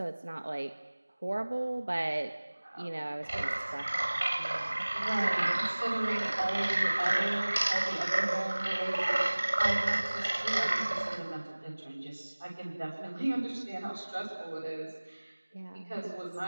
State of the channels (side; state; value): both; inverted; correlation -1.00